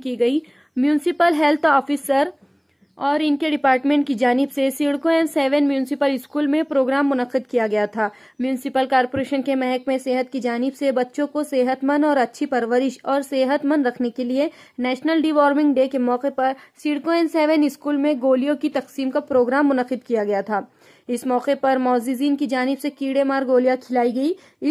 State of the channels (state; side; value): identical; both; correlation 1.00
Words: गई। म्यूनिसिपल हेल्थ ऑफिसर और इनके डिपार्टमेंट की जानिब से सिडको M7 म्यूनिसिपल स्कूल में प्रोग्राम मुनक्किद किया गया था। म्यूनिसिपल कॉरपोरेशन के महकमे सेहत की जानिब से बच्चों को सेहतमंद और अच्छी परवरिश और सेहतमंद रखने के लिए नेशनल डिवॉर्मिंग डे के मौके पर सिडको M7 स्कूल में गोलियों की तकसीम का प्रोग्राम मुनक्किद किया गया था। इस मौके पर मौजूदीन की जानिब से कीड़े मार गोलियां खिलाई गई।